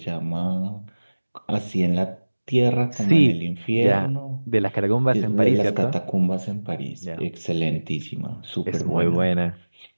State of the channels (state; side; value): inverted; both; correlation -1.00